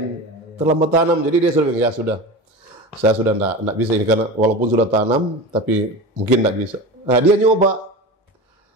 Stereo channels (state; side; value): normal; both; correlation 0.29